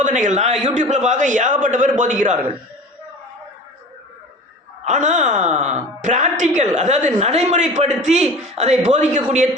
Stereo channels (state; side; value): normal; both; correlation 0.38